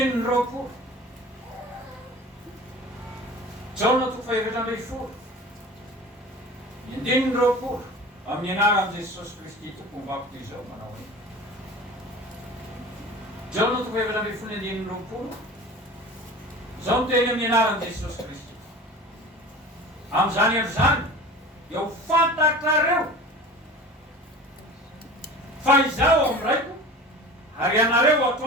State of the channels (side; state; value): both; normal; correlation 0.37